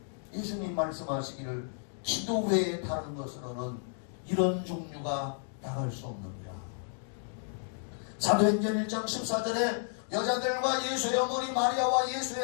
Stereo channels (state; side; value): silent; right; digital silence